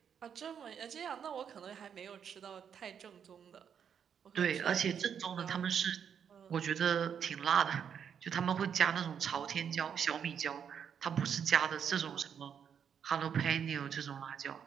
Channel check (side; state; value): left; quieter; 7.8 dB